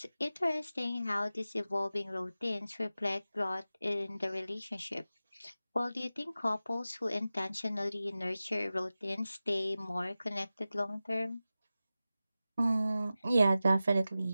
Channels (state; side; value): inverted; both; correlation -0.95